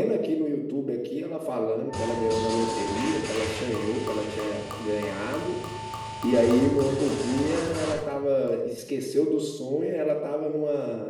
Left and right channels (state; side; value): identical; both; correlation 1.00